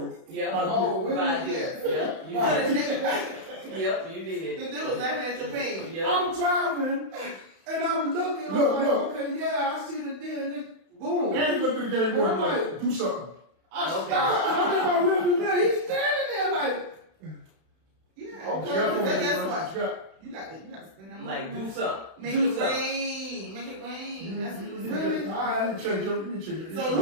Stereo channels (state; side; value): late; left; 31 ms